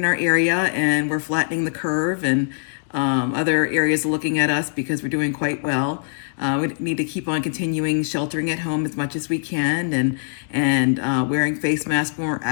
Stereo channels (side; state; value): right; silent; digital silence